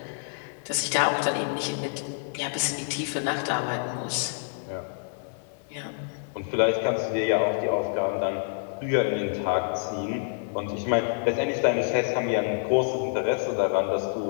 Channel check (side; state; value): right; silent; digital silence